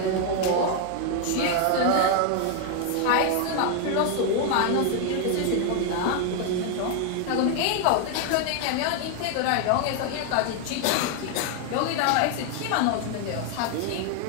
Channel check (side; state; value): both; different; correlation 0.01